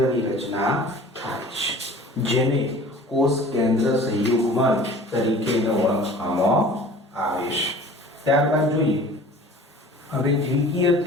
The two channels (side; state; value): both; normal; correlation 0.45